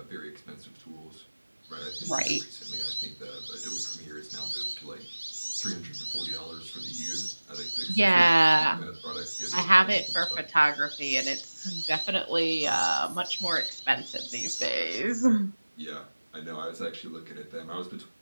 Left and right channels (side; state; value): both; inverted; correlation -1.00